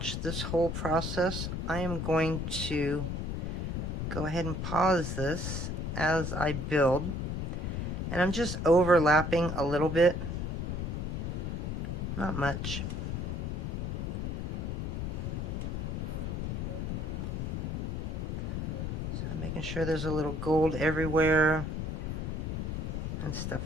this whole process. I am going to go ahead and pause this as I build, and I'm just overlapping a little bit, not much. So I'm making sure there's a little gold everywhere and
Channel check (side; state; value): left; noise; rumble, 2 dB below the sound